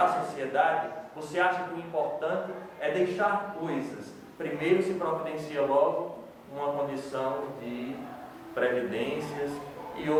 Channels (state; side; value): identical; both; correlation 1.00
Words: sociedade, você acha que o importante é deixar coisas. Primeiro se providencia logo uma condição de previdências e